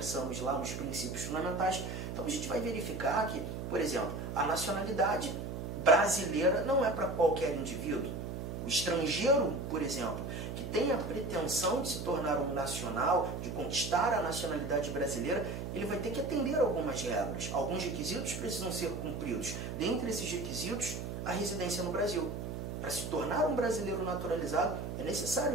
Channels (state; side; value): noise; right; hum, 5 dB below the sound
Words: lá nos princípios fundamentais. Então a gente vai verificar que, por exemplo, a nacionalidade brasileira não é para qualquer indivíduo. O estrangeiro, por exemplo, que tem a pretensão de se tornar um nacional, de conquistar a nacionalidade brasileira, ele vai ter que atender a algumas regras. Alguns requisitos precisam ser cumpridos. Dentre esses requisitos, a residência no Brasil. Para se tornar um brasileiro naturalizado, é